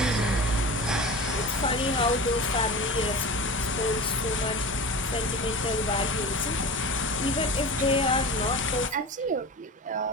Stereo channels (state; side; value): normal; both; correlation 0.32